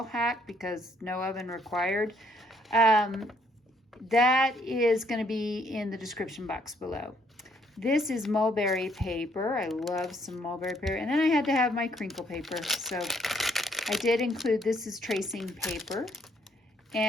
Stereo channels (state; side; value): normal; both; correlation 0.68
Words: hack because no oven required. That is going to be in the description box below. This is mulberry paper. I love some mulberry paper. And then I had to have my crinkle paper. So I did include, this is tracing paper.